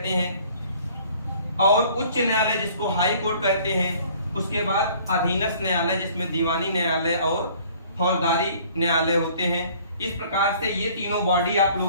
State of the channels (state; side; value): inverted; both; correlation -0.55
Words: हैं, और उच्च न्यायालय जिसको हाई कोर्ट कहते हैं। उसके बाद अधीनस्थ न्यायालय जिसमें दीवानी न्यायालय और फौजदारी न्यायालय होते हैं। इस प्रकार से ये तीनों बॉडी आप